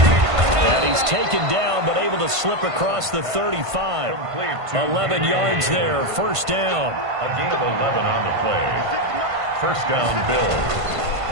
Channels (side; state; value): left; late; 1.5 ms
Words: He's taken down, but able to slip across the 35. 11 yards there, 1st down. A gain of 11 on the play. 1st down, Bills.